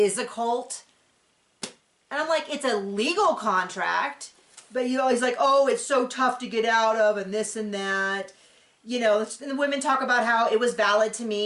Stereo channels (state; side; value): identical; both; correlation 1.00